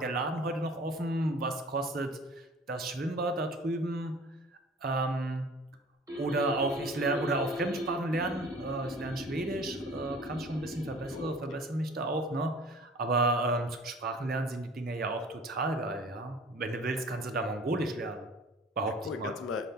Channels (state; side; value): normal; both; correlation 0.47